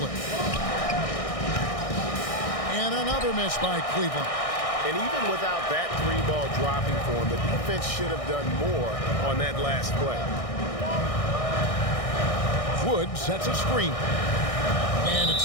And another miss by Cleveland. And even without that 3-ball dropping for him, the defense should have done more on that last play. Wood sets a screen. And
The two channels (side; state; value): right; late; 1.6 ms